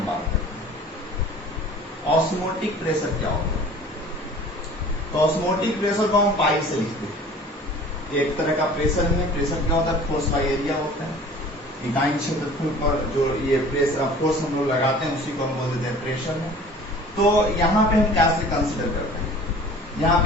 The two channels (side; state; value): both; normal; correlation 0.46